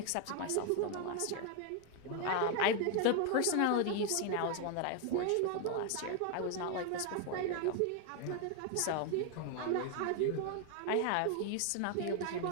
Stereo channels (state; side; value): different; both; correlation 0.01